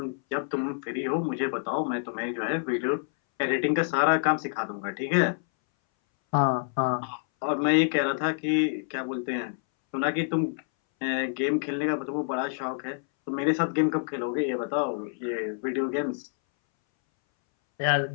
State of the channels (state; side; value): silent; right; 60 dB below the other